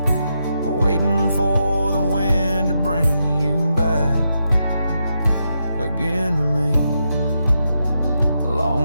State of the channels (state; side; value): inverted; both; correlation -0.84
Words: waiting for the wind to bring you back again to me.